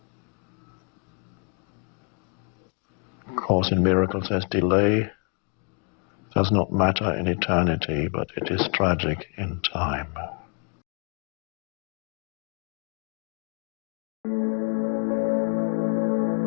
Course in Miracles says delay does not matter in eternity, but it is tragic in time.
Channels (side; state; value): right; quieter; 39.1 dB